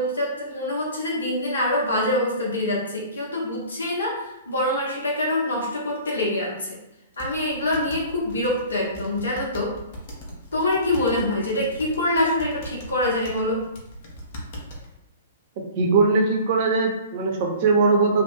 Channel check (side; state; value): both; inverted; correlation -0.45